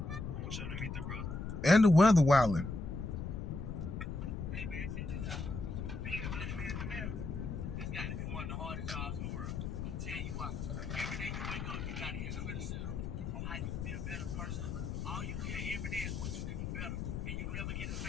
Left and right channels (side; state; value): left; noise; rumble, 4 dB below the sound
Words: And the weather wilding.